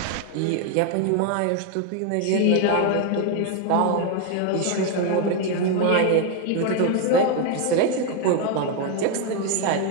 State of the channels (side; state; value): both; different; correlation 0.01